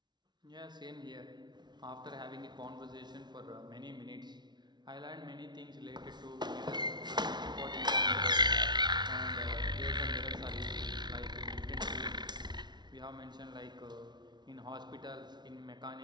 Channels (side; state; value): left; late; 0.20 ms